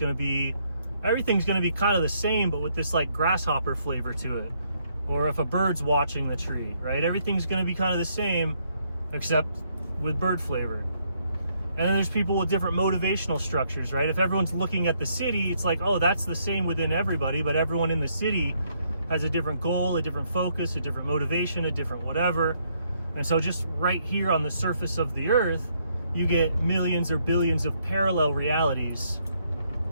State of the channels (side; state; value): both; inverted; correlation -0.72